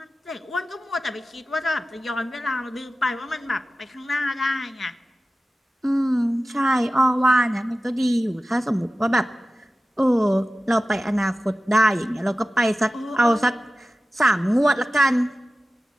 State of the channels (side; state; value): both; normal; correlation 0.95